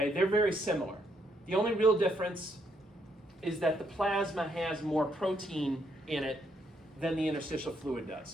They're very similar. The only real difference is that the plasma has more protein in it than the interstitial fluid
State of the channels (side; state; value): both; normal; correlation 0.74